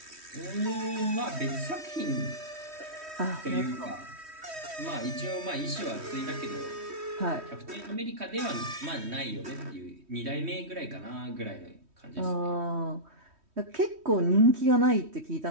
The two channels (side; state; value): left; late; 3.1 ms